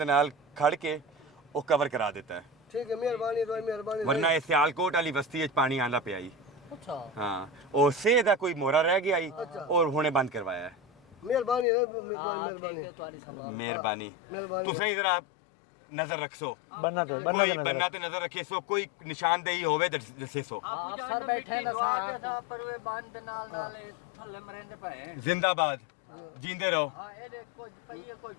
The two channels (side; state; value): right; drops out; at 11.7 s